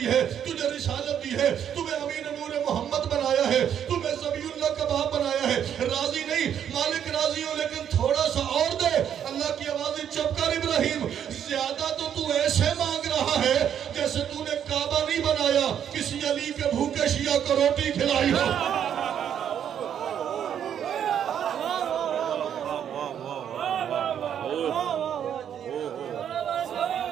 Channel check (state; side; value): quieter; left; 9.1 dB